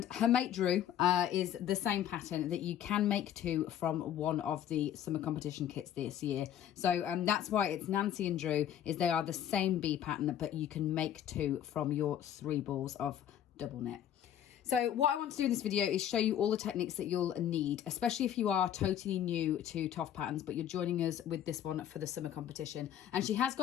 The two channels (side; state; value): right; quieter; 10.4 dB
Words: her mate Drew is the same pattern that you can make too from one of the summer competition kits this year. So that's why it's Nancy and Drew, is they are the same bee pattern, but you can make two from your 3 balls of double knit. So what I want to do in this video is show you all the techniques that you'll need, especially if you are totally new to TOFT patterns, but you're joining us with this one for the summer competition. And she has